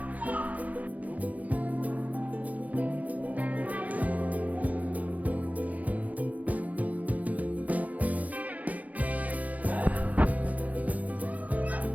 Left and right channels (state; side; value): late; left; 0.075 ms